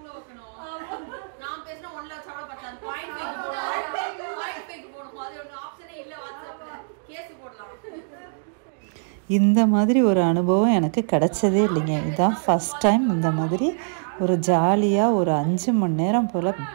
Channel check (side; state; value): left; silent; digital silence